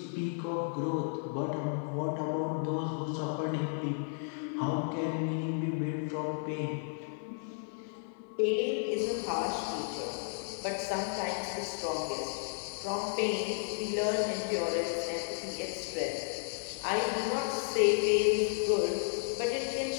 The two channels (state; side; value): silent; right; 56 dB below the other